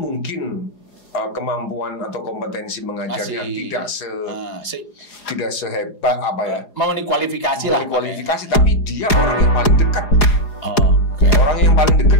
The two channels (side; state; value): right; late; 4.8 ms